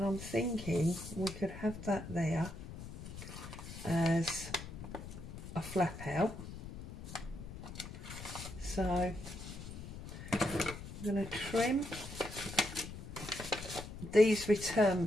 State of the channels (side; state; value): left; noise; rumble, 11 dB below the sound